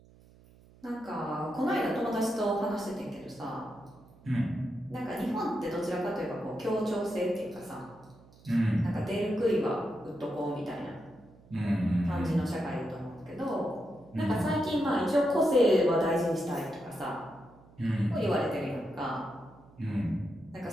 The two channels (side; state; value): right; noise; hum, 25 dB below the sound